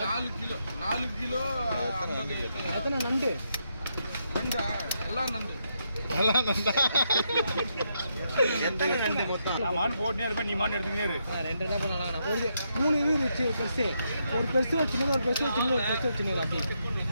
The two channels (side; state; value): both; inverted; correlation -0.80